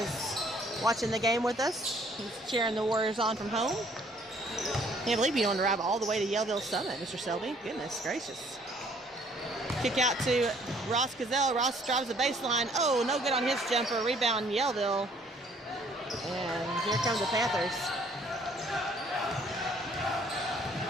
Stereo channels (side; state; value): both; normal; correlation 0.61